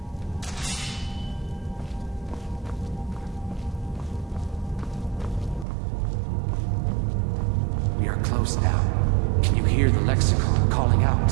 We are close now. Can you hear the lexicon calling out?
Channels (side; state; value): left; drops out; at 5.7 s